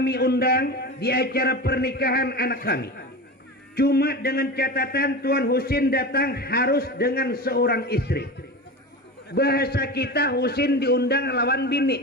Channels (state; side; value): normal; both; correlation 0.27